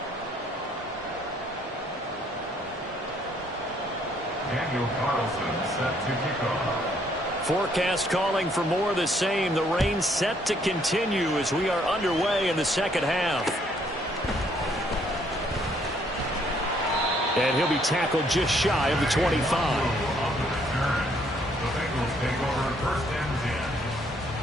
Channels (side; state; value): both; normal; correlation 0.67